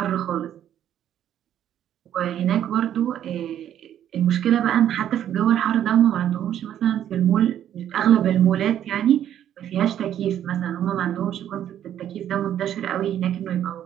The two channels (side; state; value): left; quieter; 10.6 dB